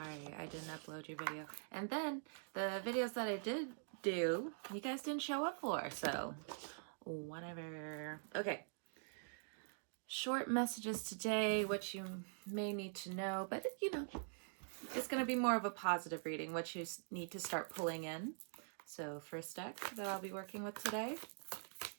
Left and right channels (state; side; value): silent; left; digital silence